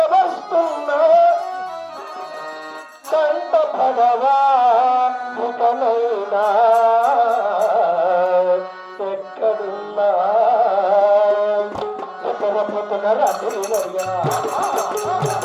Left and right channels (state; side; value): identical; both; correlation 1.00